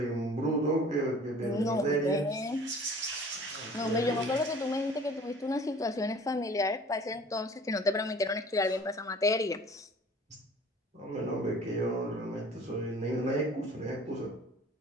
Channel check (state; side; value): normal; both; correlation 0.48